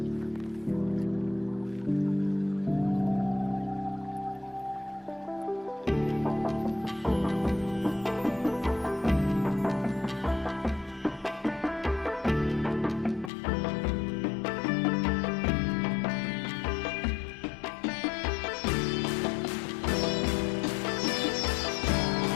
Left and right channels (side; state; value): right; drops out; at 13.3 s